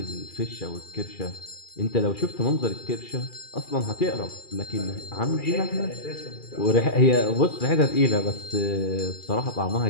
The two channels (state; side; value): late; right; 2.4 ms